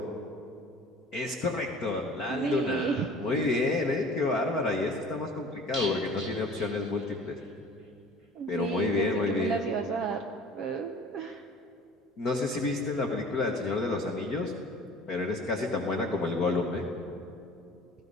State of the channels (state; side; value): normal; both; correlation 0.46